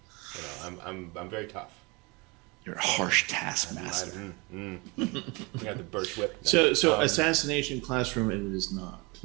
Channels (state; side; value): quieter; left; 27.2 dB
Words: am. I'm very tough. You're a harsh taskmaster. I got the birch whip. So Assassination Classroom, it is not.